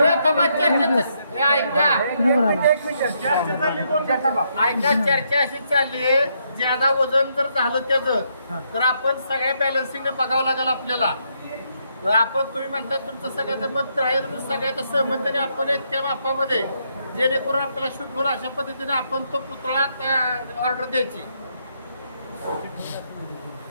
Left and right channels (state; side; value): inverted; both; correlation -0.76